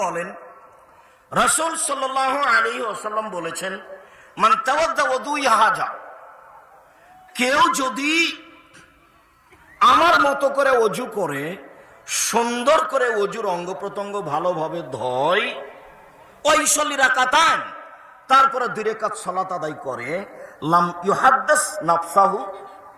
বলেন, রাসূল সাল্লাল্লাহু আলাইহি ওয়াসাল্লাম বলেছেন, মান তাওয়াদ্দা ওযুই হাজা, কেউ যদি আমার মতো করে অজু করে, সুন্দর করে অজুর অঙ্গ প্রত্যঙ্গ ভালোভাবে ধয়, ওয়াইসাল্লি রাকাতান, তারপরে 2 রাকাত সালাত আদায় করে, লাম ইউহাদ্দিস নাফসাহু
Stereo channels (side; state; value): both; identical; correlation 1.00